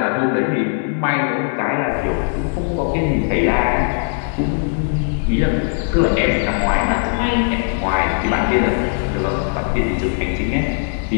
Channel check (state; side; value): silent; right; 63 dB below the other